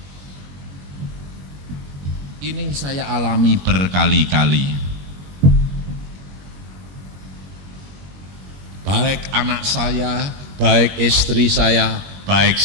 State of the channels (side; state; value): left; late; 21 ms